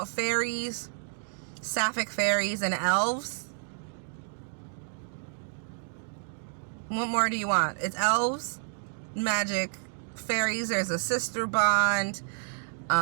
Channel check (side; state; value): left; silent; digital silence